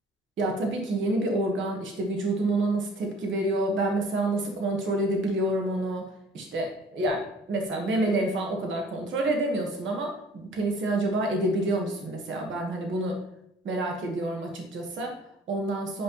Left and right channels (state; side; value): normal; both; correlation 0.52